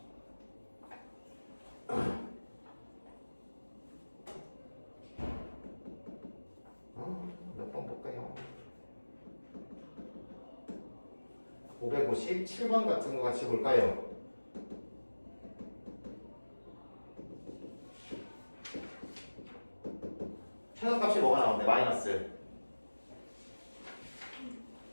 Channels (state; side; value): inverted; both; correlation -1.00